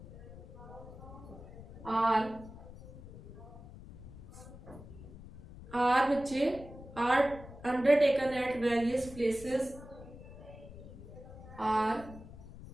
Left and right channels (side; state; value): left; noise; rumble, 15 dB below the sound